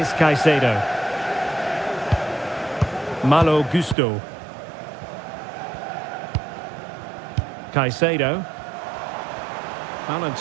Caicedo. Malo Gusto. Caicedo. Well, in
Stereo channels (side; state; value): left; drops out; at 4.0 s